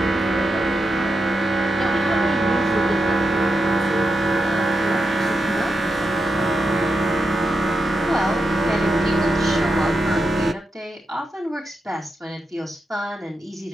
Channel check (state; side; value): normal; both; correlation 0.86